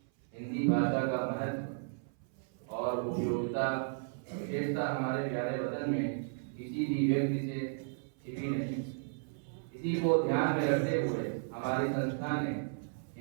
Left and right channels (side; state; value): left; silent; 55 dB below the other